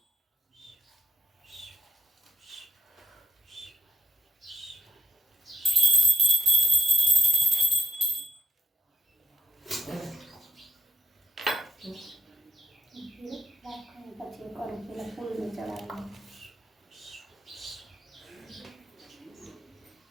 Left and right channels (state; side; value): normal; both; correlation 0.79